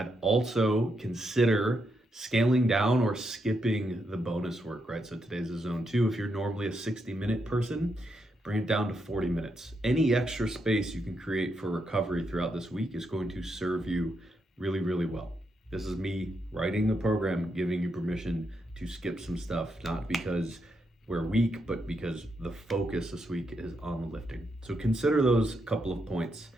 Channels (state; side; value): normal; both; correlation 0.81